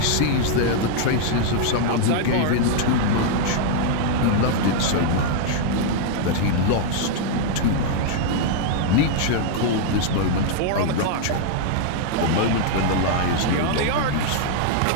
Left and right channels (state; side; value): different; both; correlation 0.00